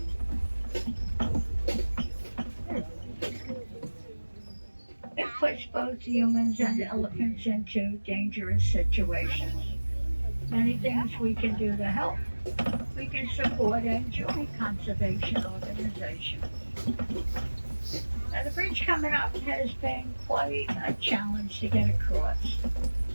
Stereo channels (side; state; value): both; inverted; correlation -1.00